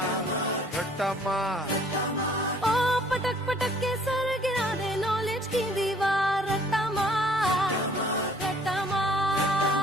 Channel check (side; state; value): both; normal; correlation 0.58